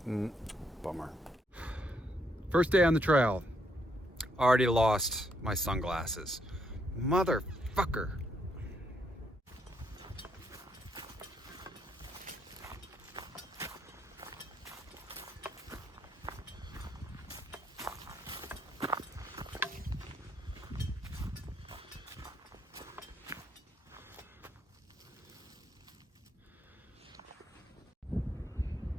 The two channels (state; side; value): normal; both; correlation 0.74